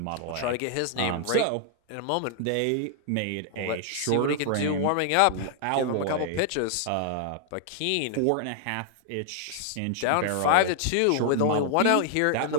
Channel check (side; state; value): both; different; correlation 0.00